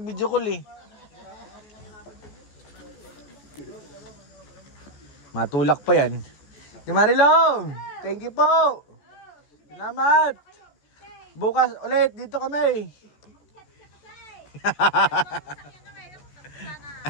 video call eh. Matulak pa yan. Si Marilong, thank you po. Salamat. Bukas ulit, dito kami.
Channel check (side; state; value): right; late; 14 ms